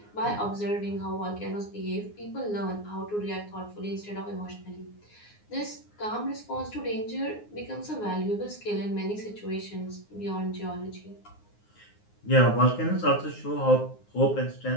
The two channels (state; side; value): late; right; 9.6 ms